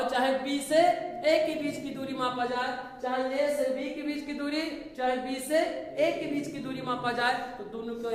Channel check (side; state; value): both; identical; correlation 1.00